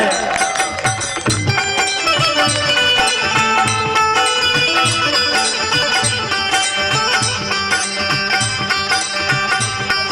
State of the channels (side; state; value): both; identical; correlation 1.00